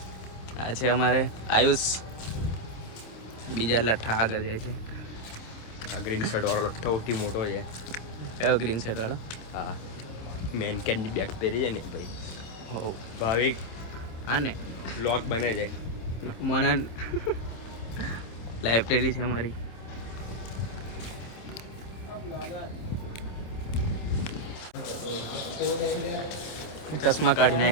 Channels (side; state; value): right; late; 26 ms